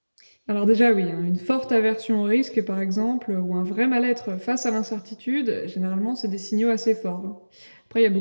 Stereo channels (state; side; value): inverted; both; correlation -1.00